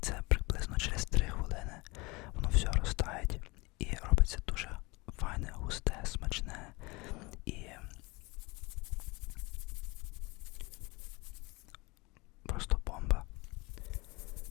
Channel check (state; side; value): quieter; right; 25.1 dB